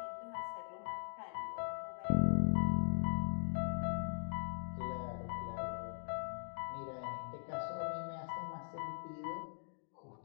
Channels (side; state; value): right; silent; digital silence